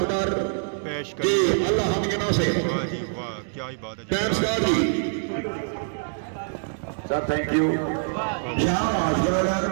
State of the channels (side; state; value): left; silent; digital silence